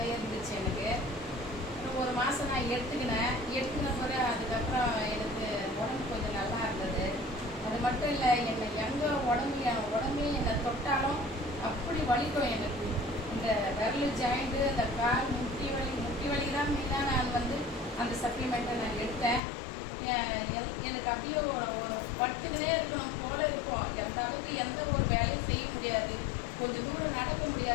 இருந்துச்சு எனக்கு. ஒரு மாதம் நான் எடுத்துக்கின பிறகு அதுக்கப்புறம் எனக்கு உடம்பு கொஞ்சம் நல்லா இருந்தது. அது மட்டும் இல்லை, என்னை எங்கே என் உடம்பே என்னை தொட்டாலும் அப்படி வலிக்கும் எனக்கு. இந்த விரல் ஜாயிண்ட்டு, அந்த கால் முட்டி வலி தான் மெயினாக நான் வந்து அந்த சப்ளிமெண்ட்டை நான் எடுத்தேன். எனக்கு அப்படியே ஒரு பட்டுக்கினே இருக்கணும் போல இருக்கும். எந்த அளவுக்கு எந்த ஒரு வேலையும் செய்ய முடியாது, கொஞ்சம் தூரம் நடக்க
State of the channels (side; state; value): right; drops out; at 19.4 s